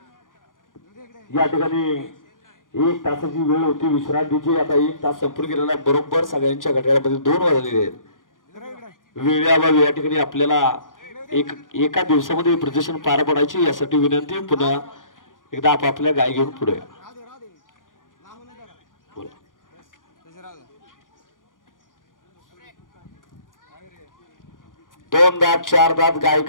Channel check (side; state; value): right; late; 0.89 ms